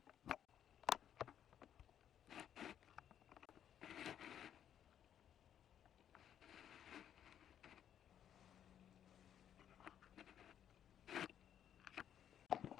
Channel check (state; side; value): quieter; right; 9.7 dB